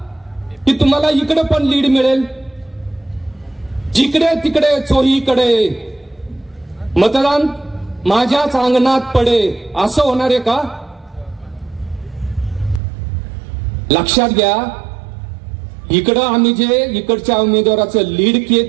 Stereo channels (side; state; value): left; drops out; at 12.8 s